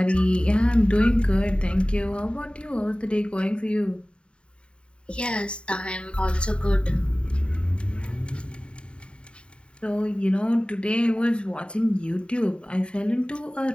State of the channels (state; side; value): late; right; 0.054 ms